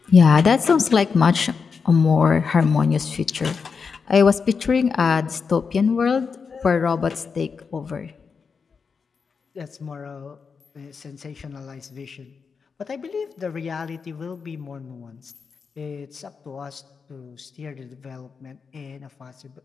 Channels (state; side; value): quieter; right; 5.5 dB